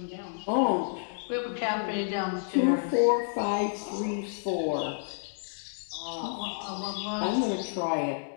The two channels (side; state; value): right; silent; digital silence